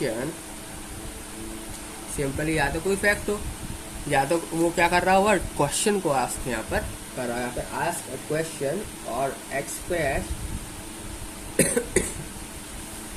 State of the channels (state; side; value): identical; both; correlation 1.00